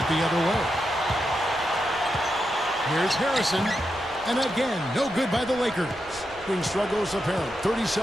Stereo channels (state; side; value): noise; right; rumble, 23 dB below the sound